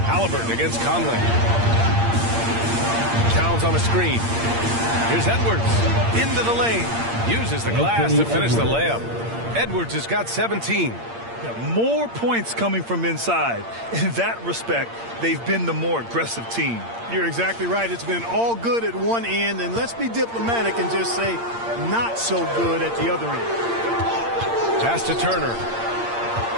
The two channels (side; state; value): left; late; 8.7 ms